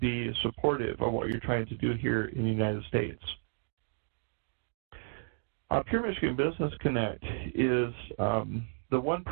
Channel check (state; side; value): silent; left; 56 dB below the other